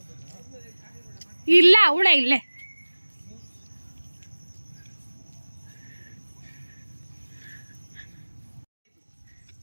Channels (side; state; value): both; inverted; correlation -1.00